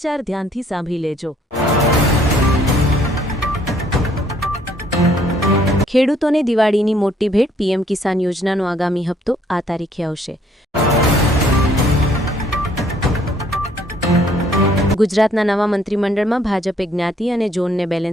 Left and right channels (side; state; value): both; normal; correlation 0.64